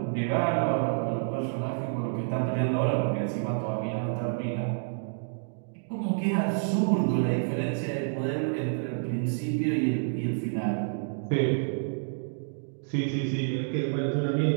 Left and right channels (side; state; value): left; silent; digital silence